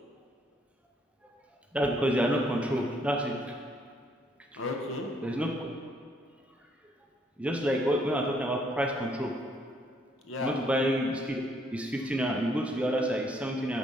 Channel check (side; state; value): both; normal; correlation 0.69